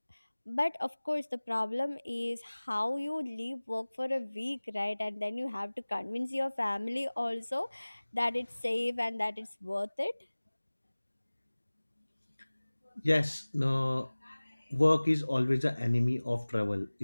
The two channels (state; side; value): inverted; both; correlation -1.00